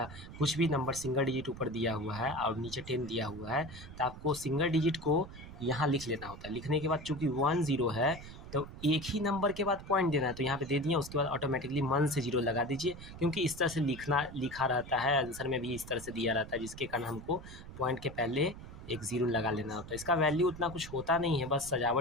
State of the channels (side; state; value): right; noise; rumble, 14 dB below the sound